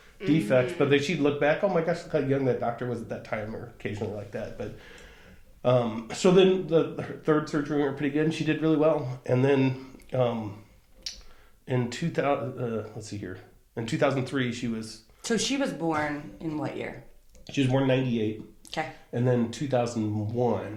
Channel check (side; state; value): both; identical; correlation 1.00